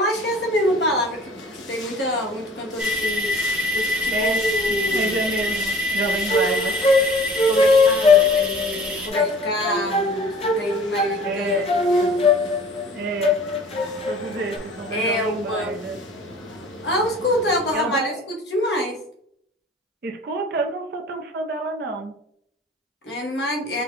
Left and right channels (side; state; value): both; normal; correlation 0.47